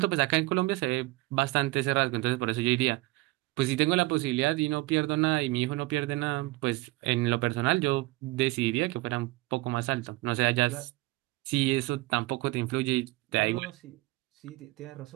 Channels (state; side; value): quieter; left; 21.0 dB